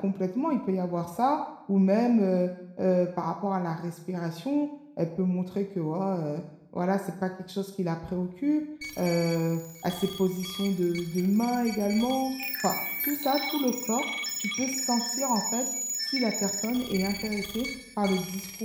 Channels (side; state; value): both; identical; correlation 1.00